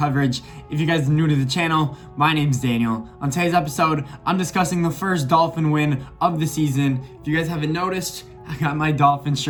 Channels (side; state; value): both; identical; correlation 1.00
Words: If you guys are new to the channel, my name's Daniel. On today's episode, I'm discussing the first Dolphin win of the season. If you guys haven't noticed, I got my Dolphins